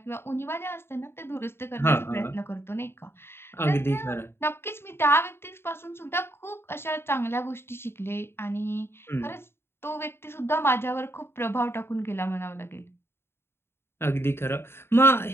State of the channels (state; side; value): late; right; 0.11 ms